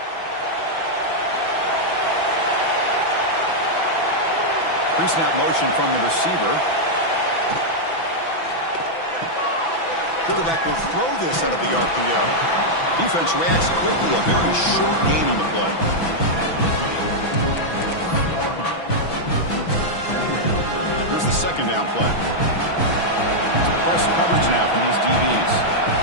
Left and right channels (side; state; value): right; late; 6.0 ms